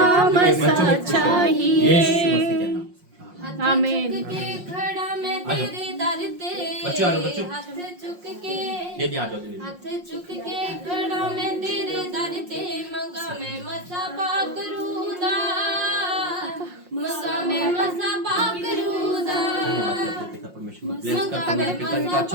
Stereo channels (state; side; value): late; left; 5.6 ms